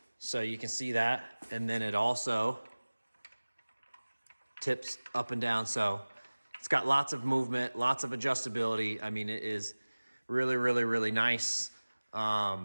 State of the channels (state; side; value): inverted; both; correlation -1.00